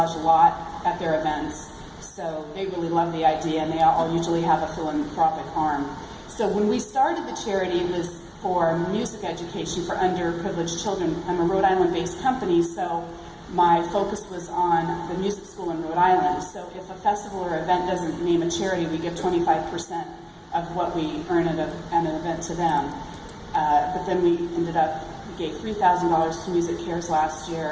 a lot at their events. So they really love the idea, and they all usually have a philanthropic arm. So when we started the charity, it was for music education for underprivileged children. I'm a Rhode Island-based company, so my focus was on the music school in Rhode Island. So if a festival or event doesn't name a charity, we give 25% of what we earn at an event to them. But then we gave $3,000 to Music Cares last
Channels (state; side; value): identical; both; correlation 1.00